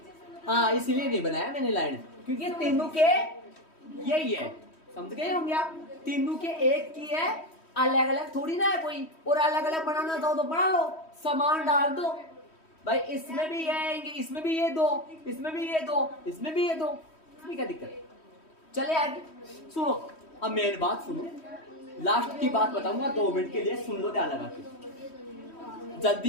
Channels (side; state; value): right; late; 3.1 ms